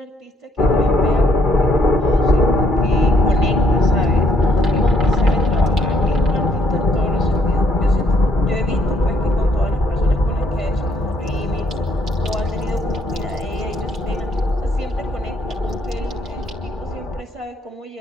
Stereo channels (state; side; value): normal; both; correlation 0.70